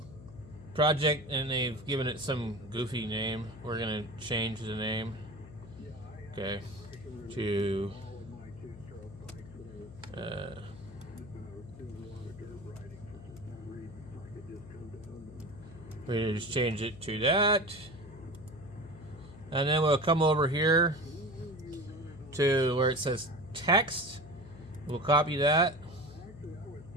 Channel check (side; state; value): left; noise; hum, 16 dB below the sound